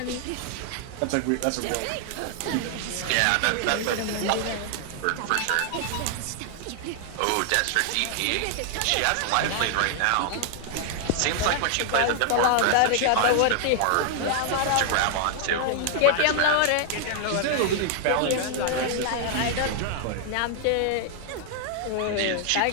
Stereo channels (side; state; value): both; different; correlation 0.00